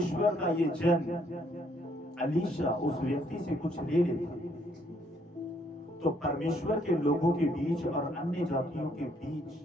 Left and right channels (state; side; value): normal; both; correlation 0.68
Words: का ये जन अलीशा उस व्यक्ति से कुछ ले लेता तो परमेश्वर के लोगों के बीच और अन्य जातियों के बीच,